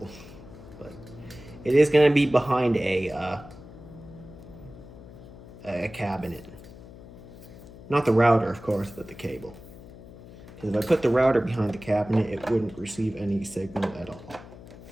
But it is going to be behind a cabinet. Not the router, of course, but the cable. Because if I put the router behind the cabinet, it wouldn't receive any signal at all.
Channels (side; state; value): left; noise; hum, 17 dB below the sound